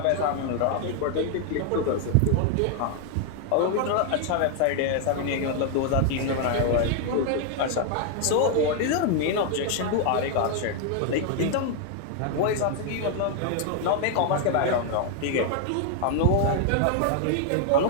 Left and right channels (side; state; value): both; different; correlation 0.00